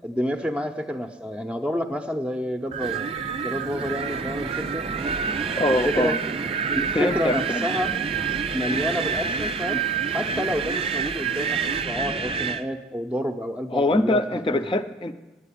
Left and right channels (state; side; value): normal; both; correlation 0.49